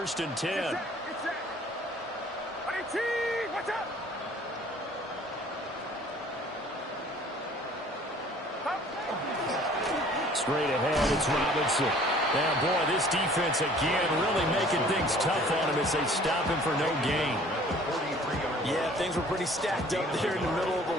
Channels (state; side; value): normal; both; correlation 0.52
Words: and 10. Get set. Watch out. Straight ahead, it's Robinson. Now, boy, this defense again really making things tough on him as they stop him for no gain. Yeah, things were pretty stacked up there in the middle of the